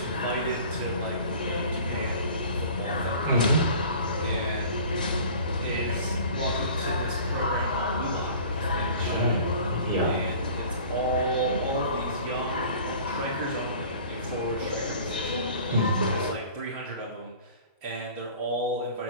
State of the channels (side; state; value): both; inverted; correlation -0.45